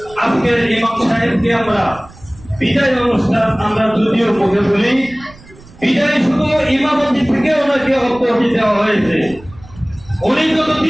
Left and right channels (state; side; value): noise; right; rumble, 22 dB below the sound